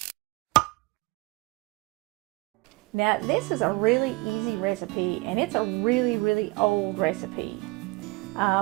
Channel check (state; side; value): quieter; left; 24.8 dB